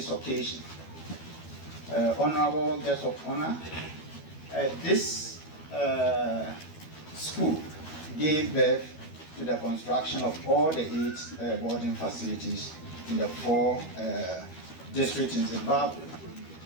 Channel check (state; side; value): late; right; 12 ms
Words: occasion. Honorable guests of honor, this school gave birth to the construction of all the 8 boarding facilities in the 4 districts in Zimbabwe.